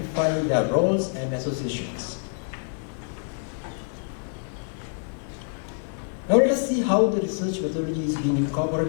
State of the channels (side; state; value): right; silent; 61 dB below the other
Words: their roles and associations. Now let us see how the research methodology is being